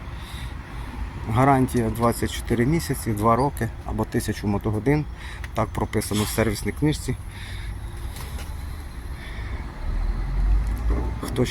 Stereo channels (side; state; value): both; identical; correlation 1.00